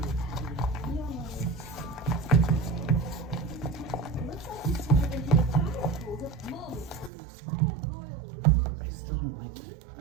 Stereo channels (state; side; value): drops out; left; at 7.1 s